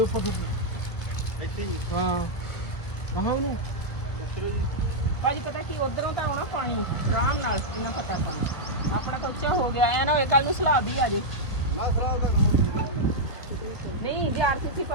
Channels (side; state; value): right; late; 1.5 ms